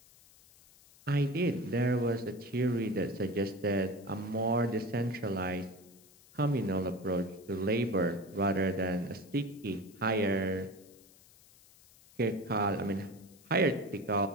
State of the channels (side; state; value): left; noise; hiss, 26 dB below the sound